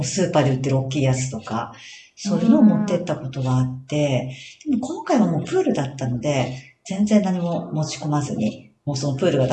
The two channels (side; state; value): both; identical; correlation 1.00